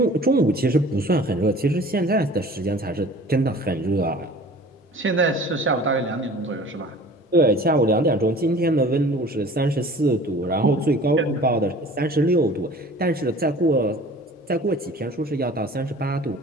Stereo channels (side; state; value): both; normal; correlation 0.45